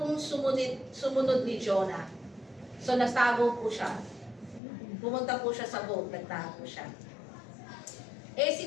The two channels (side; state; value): right; drops out; at 4.6 s